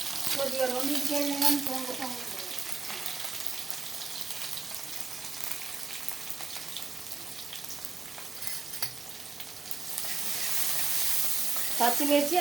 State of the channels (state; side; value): quieter; left; 4.6 dB